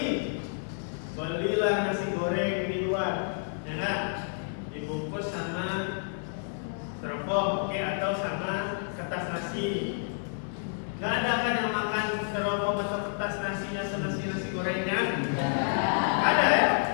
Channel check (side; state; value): right; silent; 58 dB below the other